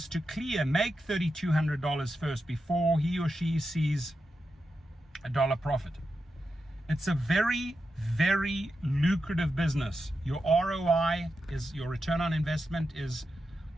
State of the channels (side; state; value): both; normal; correlation 0.88